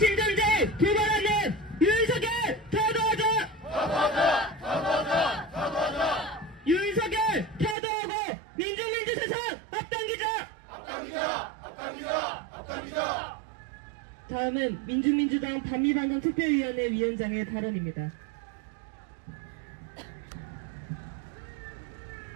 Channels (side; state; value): left; drops out; at 7.8 s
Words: 도발하는 윤석열 타도하자! 타도하자! 타도하자! 타도하자! 윤석열 타도하고 민중민주 세상 앞당기자! 앞당기자! 앞당기자! 앞당기자! 다음은 민중민주당 반미반동 특별위원회 위원장의 발언입니다.